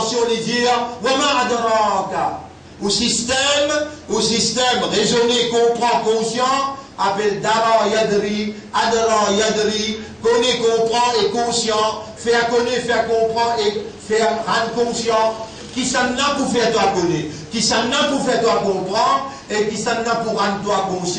les dire Wama adraka. Au système raisonné, comprend, conscient, appelle Dara Yadri, Adra Yadri, connaît, comprend et conscient, faire connaître, faire comprendre et faire rendre conscient, qui s'en a pour faire toi connaître, qui s'en a pour faire toi comprendre et qui s'en a pour rendre toi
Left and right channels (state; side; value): identical; both; correlation 1.00